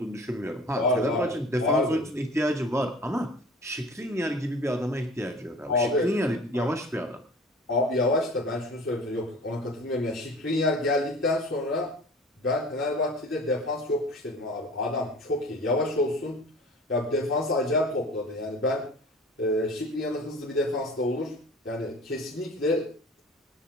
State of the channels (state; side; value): normal; both; correlation 0.43